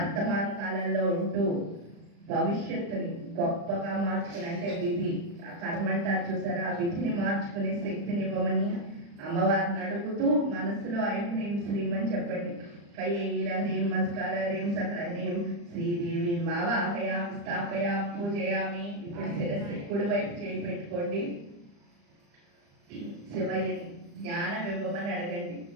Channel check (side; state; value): left; late; 35 ms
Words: కాలంలో ఉంటూ భవిష్యత్తుని గొప్పగా మార్చుకుని అంటే విధి ఆ కర్మ అంటారు చూసారా, ఆ విధిని మార్చుకునే శక్తిని ఇవ్వమని అమ్మవారిని అడుగుతూ మనసులో ఐం హ్రీం శ్రీం అని చెప్పండి. కైల హ్రీం మస్కార హ్రీం సకల హ్రీం శ్రీదేవి మావాహయామి స్థాపయామి పూజయామి. ఇప్పుడు శిరస్సు కుడి వైపు చేయి పెట్టుకోండి. శివయ్య జ్ఞానం ఇవ్వమని అడగండి.